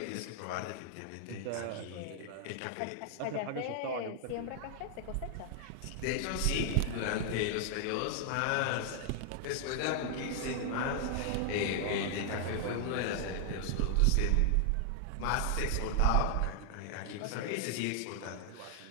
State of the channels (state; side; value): different; both; correlation 0.00